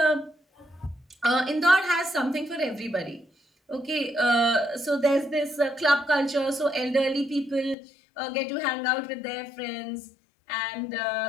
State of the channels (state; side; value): drops out; right; at 7.8 s